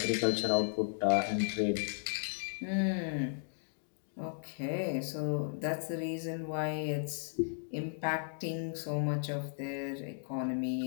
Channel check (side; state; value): right; silent; digital silence